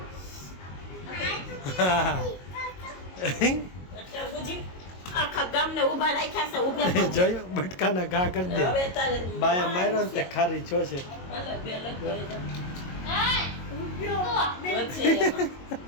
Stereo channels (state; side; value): late; right; 22 ms